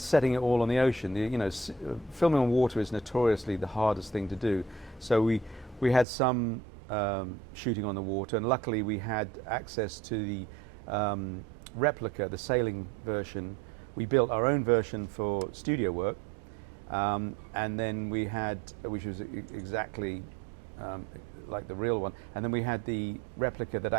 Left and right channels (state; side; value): drops out; left; at 6.1 s